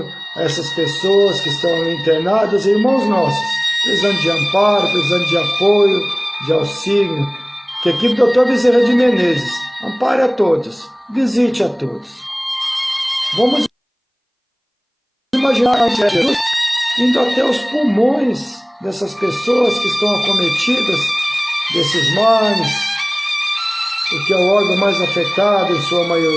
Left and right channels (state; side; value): identical; both; correlation 1.00